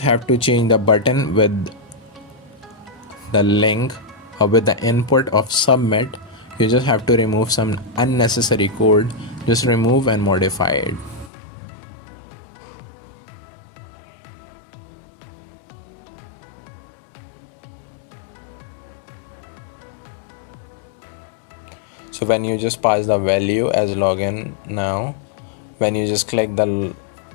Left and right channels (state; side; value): drops out; right; at 11.3 s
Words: have to change the button with the link or with the input of submit. You just have to remove some unnecessary code. Just remove and modify it. So when you just pass the value as login now, when you just click the